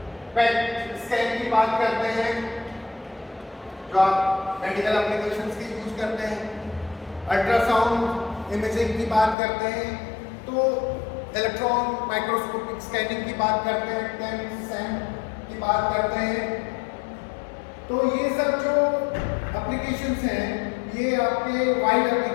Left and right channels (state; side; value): drops out; right; at 9.3 s